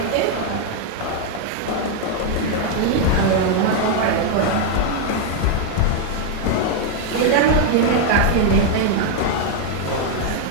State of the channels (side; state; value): both; different; correlation 0.00